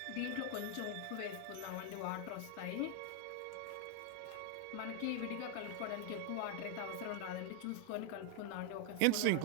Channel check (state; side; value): different; both; correlation 0.00